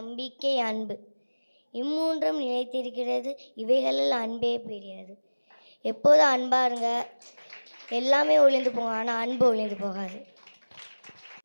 அன்பு இம்மூன்றும் நிலைத்திருக்கிறது, இவைகளில் அன்பே பெரியது. எப்போதும் அன்பாக இருங்க, எல்லாமே ஒளிந்து போகும், ஆனால் அன்பு ஒளிந்து போகாது.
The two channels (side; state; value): both; inverted; correlation -1.00